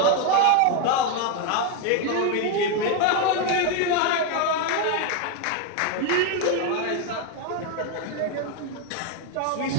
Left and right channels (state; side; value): different; both; correlation 0.01